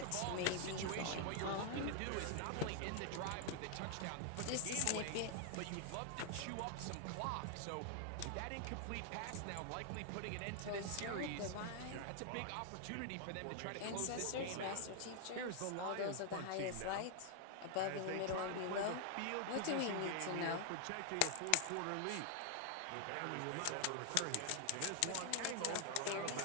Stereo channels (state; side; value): different; both; correlation 0.00